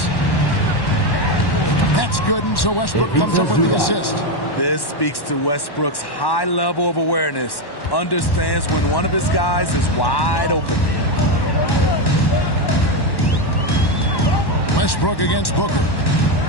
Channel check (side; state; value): right; late; 1.1 ms